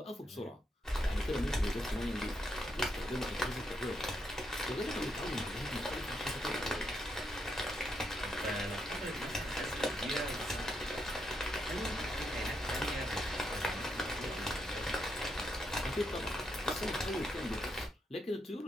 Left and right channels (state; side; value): normal; both; correlation 0.79